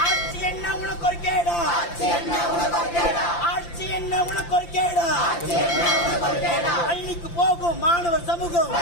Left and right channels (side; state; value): right; late; 5.8 ms